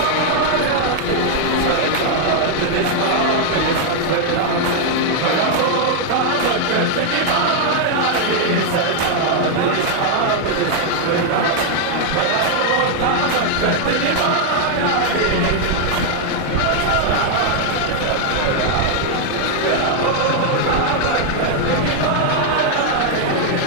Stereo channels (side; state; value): both; different; correlation 0.00